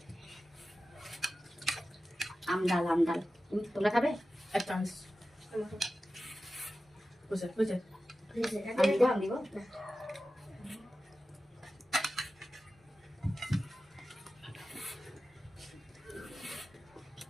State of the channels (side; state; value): both; normal; correlation 0.94